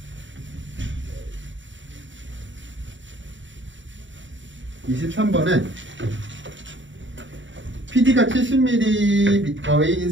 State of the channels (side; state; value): left; late; 0.55 ms